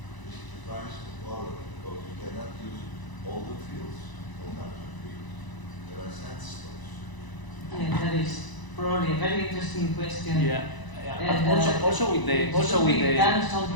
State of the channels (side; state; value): right; late; 1.0 ms